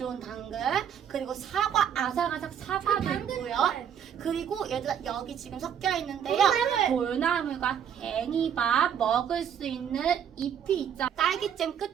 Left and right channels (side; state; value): left; quieter; 8.6 dB